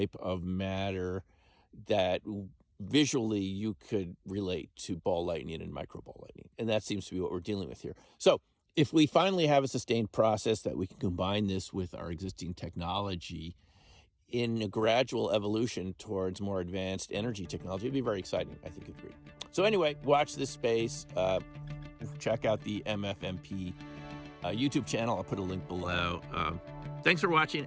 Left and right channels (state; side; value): identical; both; correlation 1.00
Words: of matter that visually you could relate to ball lightning and microball lightning. And that seems to be what we're dealing with here. So if we finally have a sustained process that we can combine this with our existing technology in a gradual evolution towards more advanced energy technology, it'd be very exciting, I think, agreed. So anyway, watch this space. Check out the MFMP YouTube channel. I'll put a link below. Thanks for watching,